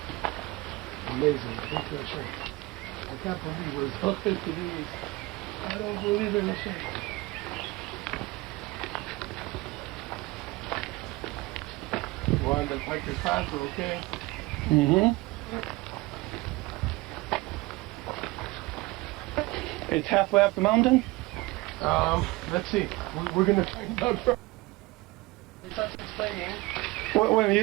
Amazing. Thank you, Hashem. I can't believe we're so good to do this. I don't believe in Hashem. We're on the hiker's path, we're okay. Mm-hmm. It's halfway up the mountain? Let's see. We're going to find out. He starts explaining. Well,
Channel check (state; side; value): quieter; left; 21.6 dB